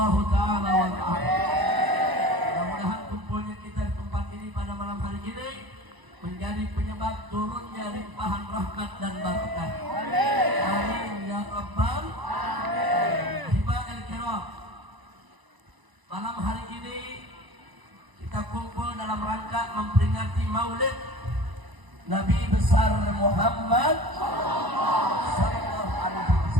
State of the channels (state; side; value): late; left; 1.0 ms